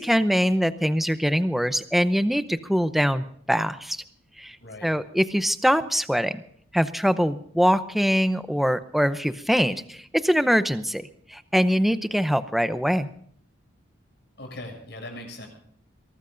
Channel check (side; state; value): both; normal; correlation 0.97